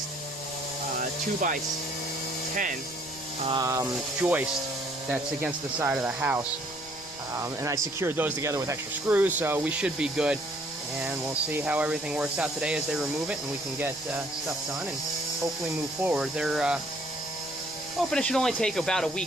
2x10 joist that's against the side of the house. And I secured those together with extra screws, so we should be good. And we'll see how everything works out today as they remove it, and we can get stuff done and hopefully move forward. They're hoping it should only take about a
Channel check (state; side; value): noise; right; rumble, 24 dB below the sound